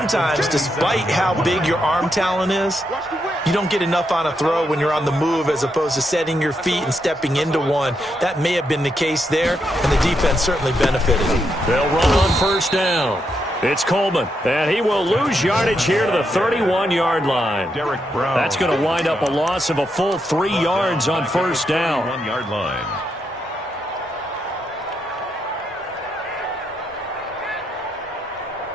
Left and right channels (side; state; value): both; normal; correlation 0.81